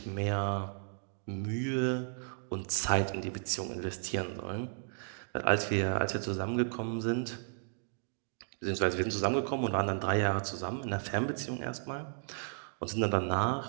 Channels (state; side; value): silent; left; digital silence